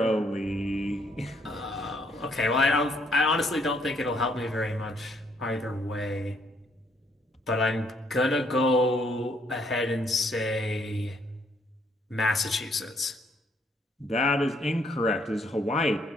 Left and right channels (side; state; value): both; normal; correlation 0.69